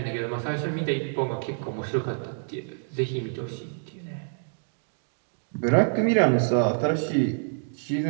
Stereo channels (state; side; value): silent; left; digital silence